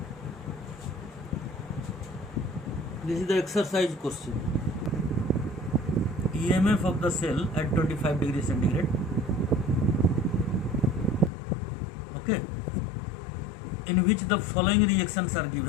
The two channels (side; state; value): right; drops out; at 11.3 s